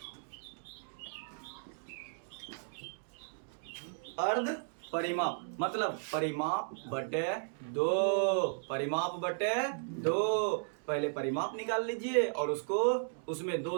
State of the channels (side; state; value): left; silent; digital silence